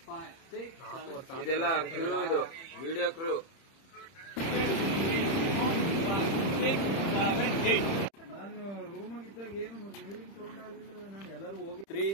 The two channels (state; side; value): late; right; 30 ms